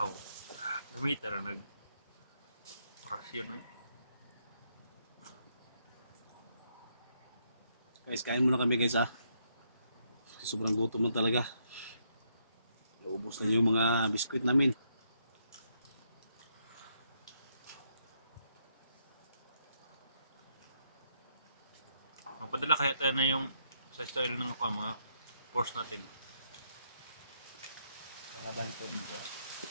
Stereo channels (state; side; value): inverted; both; correlation -0.75